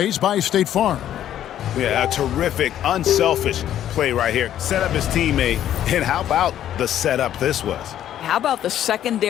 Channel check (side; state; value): right; quieter; 11.3 dB